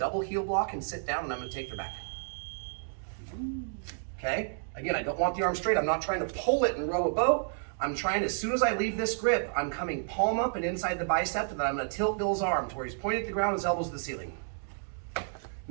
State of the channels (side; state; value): left; silent; digital silence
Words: heel block and sit down, and I'm going to take their back. Okay? Again, I don't want the arm straight. I'm not trying to pull it and row a boat. I'm trying, as soon as I leave this grip, I'm coming palm up and inside the bicep, and then I'm going to tilt Bill's arm to where he's pointing at the ground, his elbows to the ceiling.